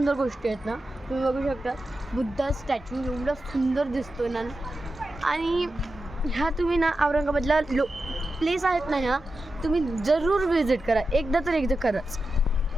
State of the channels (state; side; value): normal; both; correlation 0.91